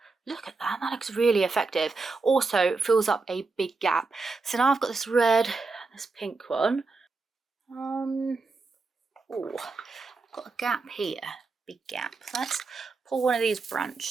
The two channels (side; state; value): left; quieter; 3.9 dB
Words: Look at that, that looks really effective. Also fills up a big gap. So now I've got this red and this pink one. Oh, I've got a gap here. Big gap. Let's pull one of these